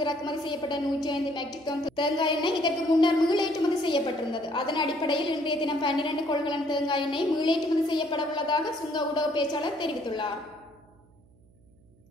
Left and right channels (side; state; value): right; noise; hum, 30 dB below the sound